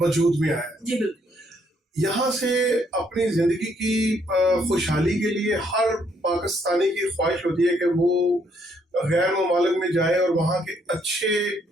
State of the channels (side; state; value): both; normal; correlation 0.70